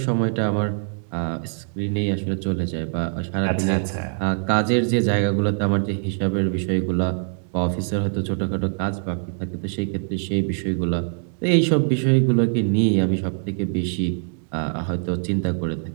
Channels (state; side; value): silent; left; 63 dB below the other